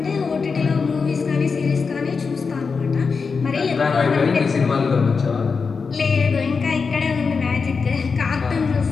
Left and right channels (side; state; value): right; quieter; 5.1 dB